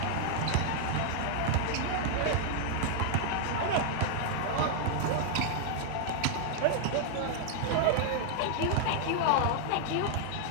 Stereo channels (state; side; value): different; both; correlation 0.00